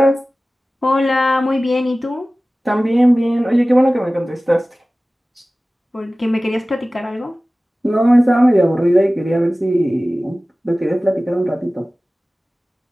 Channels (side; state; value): both; normal; correlation 0.97